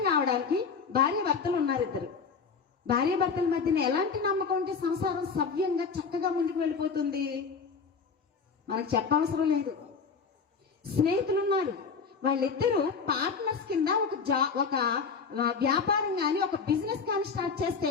కావడానికి భార్య భర్తలు ఉన్నారు, ఇద్దరు భార్య భర్తల మధ్యన ఎలాంటి నమ్మకం ఉంటే సంసారం సవ్యంగా చక్కగా ముందుకు వెళ్ళిపోతుంది? మనకు చెప్పవసరం లేదు. స్నేహితులు ఉన్నారు, వాళ్ళిద్దరూ పార్ట్నర్స్ కింద ఒక వ్యాపారం కానీ ఒక బిజినెస్ కానీ స్టార్ట్ చేస్తే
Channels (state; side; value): quieter; right; 5.4 dB